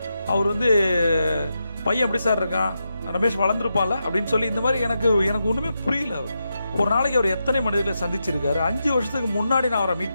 அவர் பையன் எப்படி சார் இருக்கான், ரமேஷ் வளர்ந்துருப்பான்ல அப்படின்னு சொல்லி, இந்த மாதிரி எனக்கு ஒன்றுமே புரியல. ஒரு நாளைக்கு அவர் எத்தனை மனிதர்களை சந்திச்சிருக்காரு. 5 வருஷத்துக்கு முன்னாடி நான் அவரை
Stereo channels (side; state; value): both; inverted; correlation -0.86